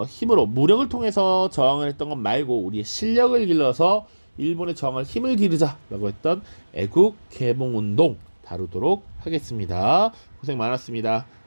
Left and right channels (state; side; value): inverted; both; correlation -1.00